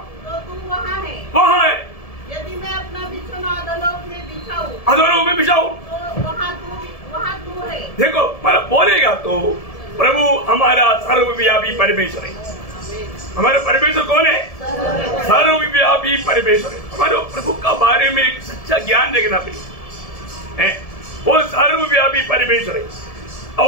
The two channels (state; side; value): late; right; 1.7 ms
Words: तो तू वहाँ है। वहाँ है। यदि मैं अपना बिछौना अधोलोक में बिछाऊं, अधोलोक में बिछाऊं, तो वहाँ तू है। देखो, मतलब बोलेगा तो प्रभु हमारा सर्वव्यापी परमेश्वर है। हमारा परमेश्वर कौन है? सर्वव्यापी परमेश्वर है। हमारे प्रभु का बारे में एक सच्चा ज्ञान रखना है। वो सर्वव्यापी परमेश्वर है।